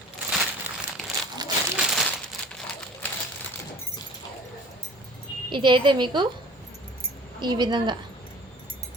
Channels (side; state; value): both; normal; correlation 0.46